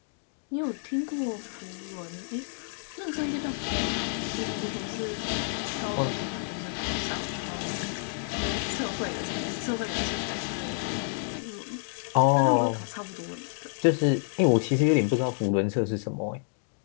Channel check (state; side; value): silent; right; digital silence